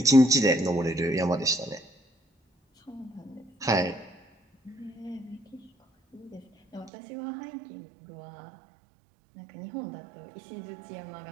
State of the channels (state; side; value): drops out; left; at 6.9 s